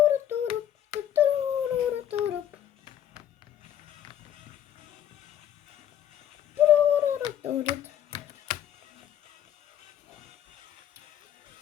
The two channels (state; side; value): quieter; right; 10.6 dB